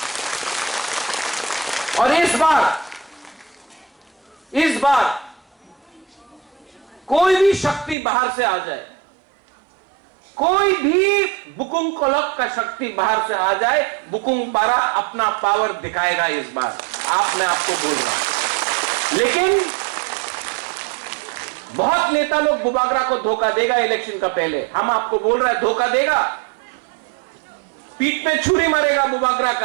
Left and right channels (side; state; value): left; drops out; at 8.0 s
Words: और इस बार कोई भी शक्ति बाहर से आ जाए, कोई भी बुकुंग कोलक का शक्ति बाहर से आ जाए, बुकुंग पारा अपना पावर दिखाएगा इस बार। मैं आपको बोल रहा हूं, लेकिन बहुत नेता लोग बुबागरा को धोखा देगा इलेक्शन का पहले। हम आपको बोल रहे हैं धोखा देगा, पीठ में छुरी मारेगा बुबागरा